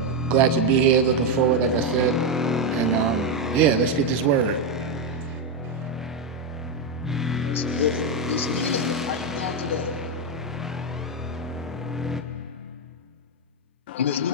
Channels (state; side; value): normal; both; correlation 0.06